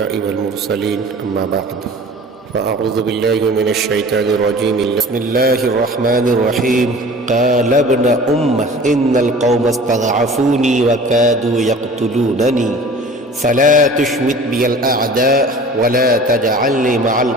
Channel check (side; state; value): both; normal; correlation 0.43